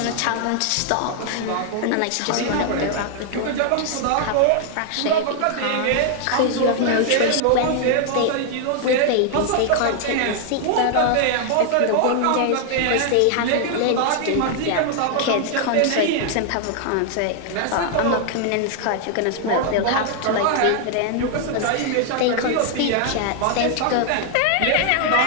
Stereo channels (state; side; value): different; both; correlation 0.00